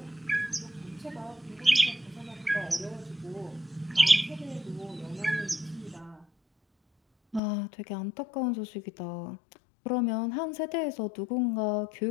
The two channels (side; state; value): right; drops out; at 7.4 s